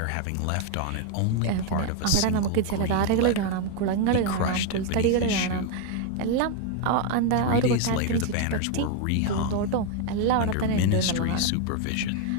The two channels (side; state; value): both; different; correlation 0.01